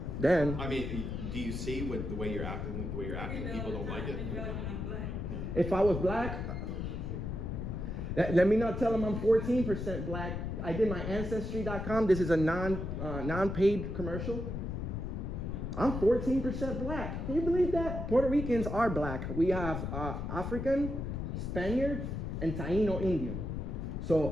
then, I mean, do you see with the way you're acting? People don't like it. If I was black, let me not tell them I'm 14% black. I did my Ancestry.com. This is a non-paid commercial. I'm 14% black. Can you believe that? Puerto Ricans are black. We have African, Spaniard, and Taino Indian.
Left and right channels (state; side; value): noise; left; rumble, 4 dB below the sound